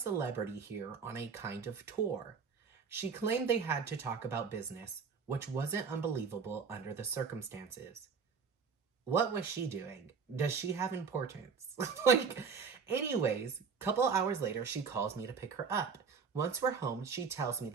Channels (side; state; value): left; quieter; 5.8 dB